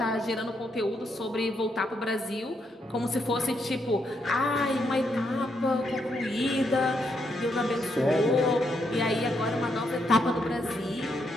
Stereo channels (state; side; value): normal; both; correlation 0.78